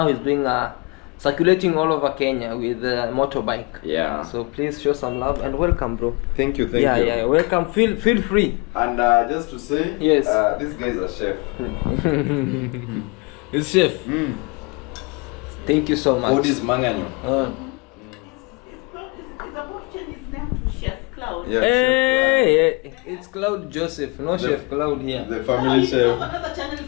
he's doing circulating all over Kenya with a motorbike. Yeah. So please show some love and welcome, bro. Thank you. Yeah, welcome. Feel free. And just to say, yes, this guy is a chef. He's chef. Thank you so much. What is Manganyo? Claude. Yeah, hey, it's Claude Joseph, no Chef Claude here. The family chef. Another channel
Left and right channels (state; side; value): quieter; right; 29.5 dB